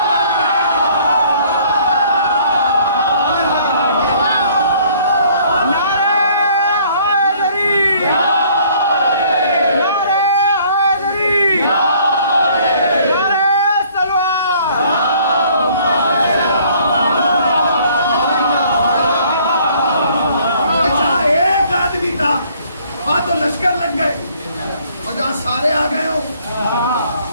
तो लश्कर लग गए और जहां सारे आ गए हो,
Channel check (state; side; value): inverted; both; correlation -0.59